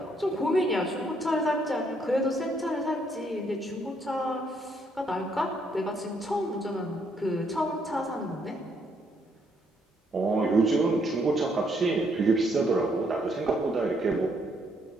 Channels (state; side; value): normal; both; correlation 0.72